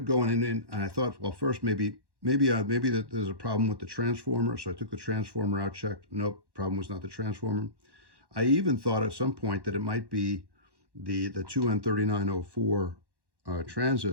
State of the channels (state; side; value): late; left; 1.1 ms